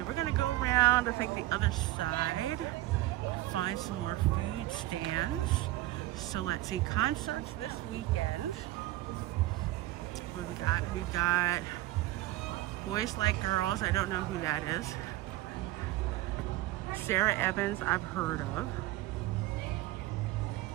we're gonna go around, I think, the other side, find some more food stands. So let's see, concerts this weekend. What we got? We got Boys Like Girls. I don't know who that is. Sarah Evans, I've heard of.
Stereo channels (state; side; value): quieter; left; 16.8 dB